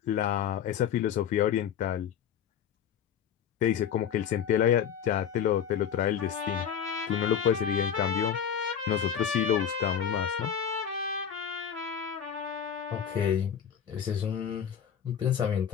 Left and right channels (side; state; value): right; quieter; 8.4 dB